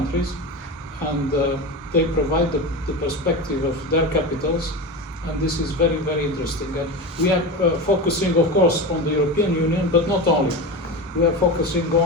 and they provide the perspective of their capitals, and this is very, very interesting. And we are focusing, of course, on the European Union, but not only. We are focusing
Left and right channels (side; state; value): both; normal; correlation 0.23